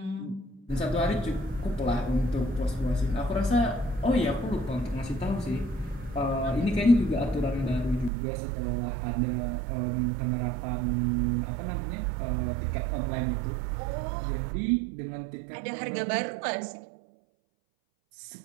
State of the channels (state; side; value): drops out; left; at 8.1 s